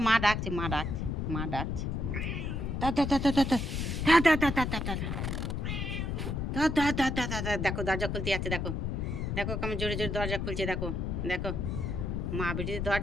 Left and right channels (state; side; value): noise; left; rumble, 2 dB below the sound